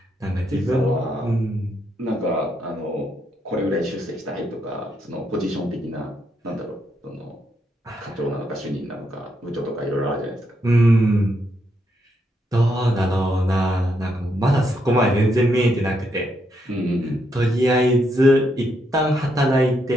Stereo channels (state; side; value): normal; both; correlation 0.78